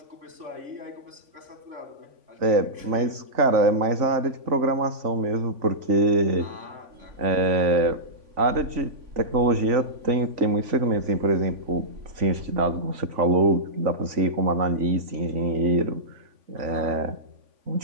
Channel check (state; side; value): late; left; 3.5 ms